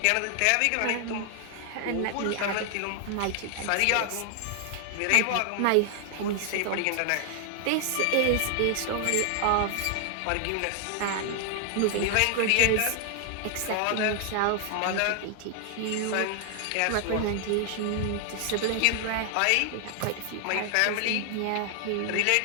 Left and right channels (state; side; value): different; both; correlation 0.00